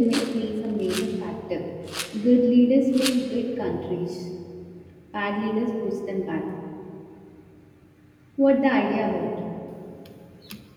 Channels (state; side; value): identical; both; correlation 1.00